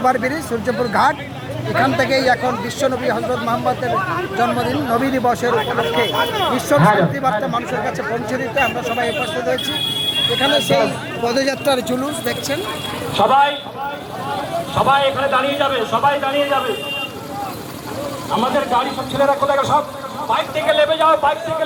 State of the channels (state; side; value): identical; both; correlation 1.00